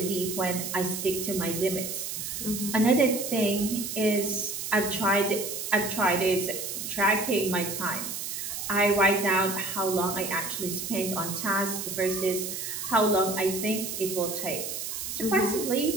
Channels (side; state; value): right; noise; hiss, 5 dB below the sound